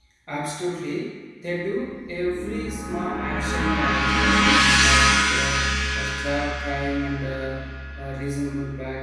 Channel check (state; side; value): identical; both; correlation 1.00